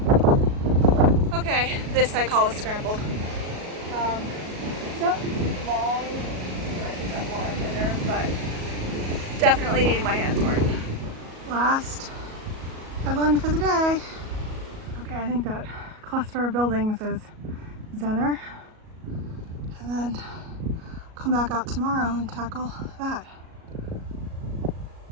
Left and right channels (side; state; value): left; late; 37 ms